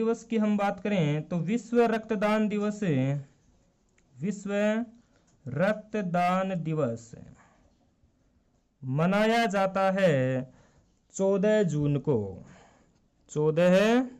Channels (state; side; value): identical; both; correlation 1.00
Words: की हम बात करें तो विश्व रक्तदान दिवस मनाया जाता है 14 जून को। 14